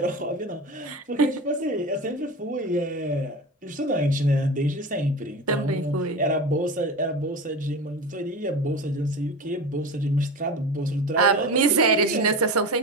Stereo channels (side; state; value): both; normal; correlation 0.28